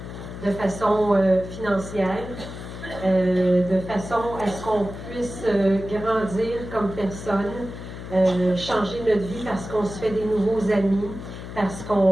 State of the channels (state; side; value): noise; left; hum, 11 dB below the sound